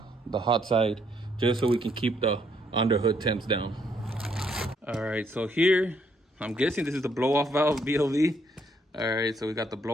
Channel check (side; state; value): both; normal; correlation 0.71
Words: the hot side just so we can keep the underhood temps down. All right, so here, I'm guessing this is the blow off valve BLV. All right, so we got the